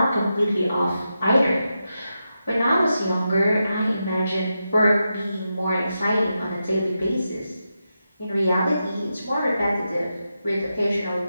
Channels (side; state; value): both; inverted; correlation -0.88